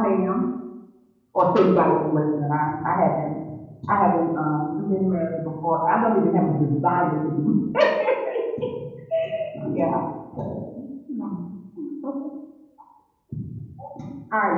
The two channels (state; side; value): identical; both; correlation 1.00